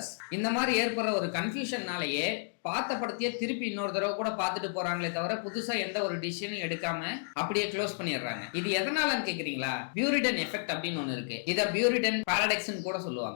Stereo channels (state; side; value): silent; right; digital silence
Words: இந்த மாதிரி ஏற்படுற ஒரு கன்ஃபியூஷன்னாலேயே பார்த்த படத்தையே திருப்பி இன்னொரு தடவை கூட பார்த்துட்டு போறாங்களே தவிர புதுசா எந்த ஒரு டிசிஷனும் எடுக்காம அப்படியே க்ளோஸ் பண்ணிடுறாங்க. இது எதனாலன்னு கேக்குறீங்களா? பியூரிடன் எஃபெக்ட் அப்படின்னு ஒண்ணு இருக்கு. இத பியூரிடன் பாரடாக்ஸ்னு கூட